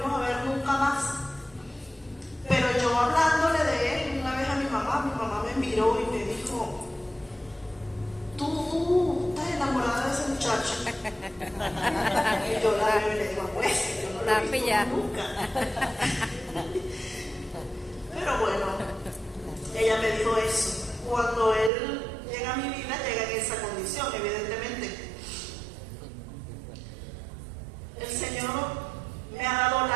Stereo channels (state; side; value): drops out; left; at 21.7 s